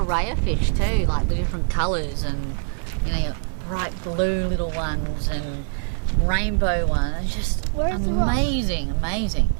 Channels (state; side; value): silent; left; digital silence